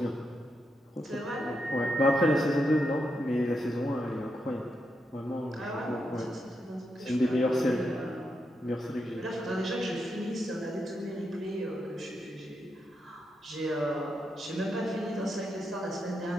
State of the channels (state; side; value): normal; both; correlation 0.84